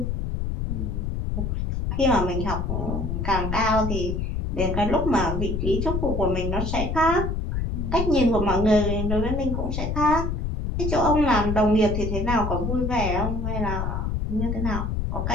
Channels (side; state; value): left; noise; rumble, 1 dB below the sound